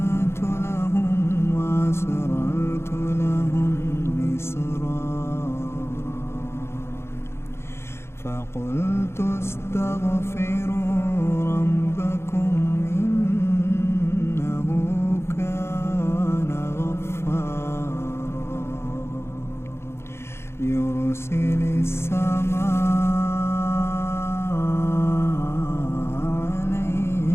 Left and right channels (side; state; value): right; late; 0.12 ms